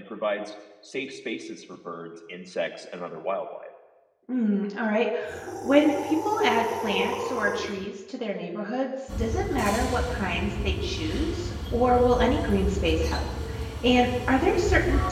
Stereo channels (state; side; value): identical; both; correlation 1.00